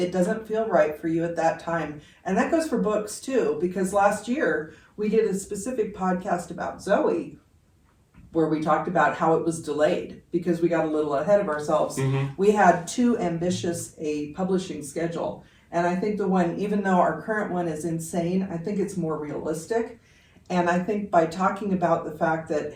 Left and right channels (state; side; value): identical; both; correlation 1.00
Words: doesn't feel right for you at that time. And that goes for books too, because last year we did a specific podcast about Zoe where we talked about how it was delayed because we got a little ahead of ourselves. We had too ambitious a publishing schedule. And I think the one, even though our current one is insane, I think it's more realistic. And I think by talking about the fact that,